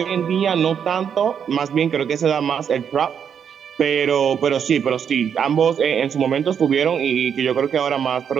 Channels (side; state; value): left; quieter; 7.8 dB